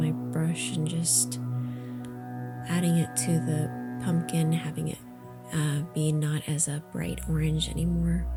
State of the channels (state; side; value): identical; both; correlation 1.00